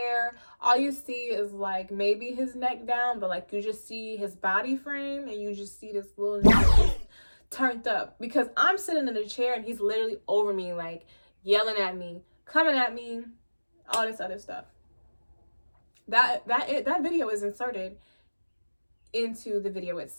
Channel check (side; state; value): both; inverted; correlation -1.00